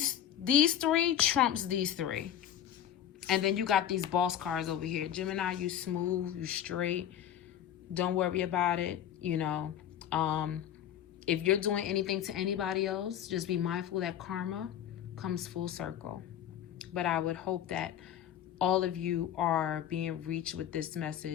3 trumps these 3. And then you got these boss cards over here. Gemini, you smooth, you straight. Don't worry about it. You know, if you're doing anything to anybody else, just be mindful that karma comes full circle. But I would hope that all of you are being reached with this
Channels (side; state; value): right; quieter; 10.4 dB